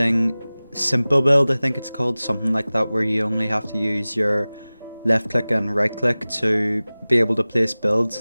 simple build, I think it's called, something like that, where you only have to use your left click and right click to be able to place builds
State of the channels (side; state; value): both; inverted; correlation -0.98